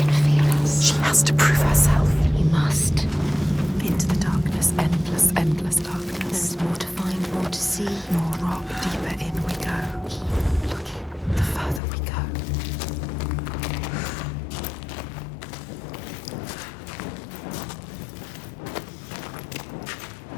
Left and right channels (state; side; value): drops out; right; at 11.8 s